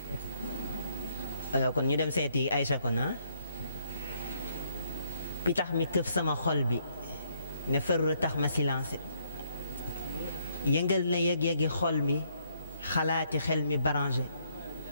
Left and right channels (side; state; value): both; inverted; correlation -0.71